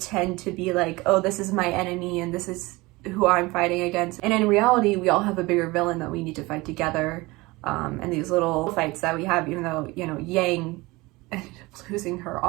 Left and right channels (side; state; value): left; quieter; 22.2 dB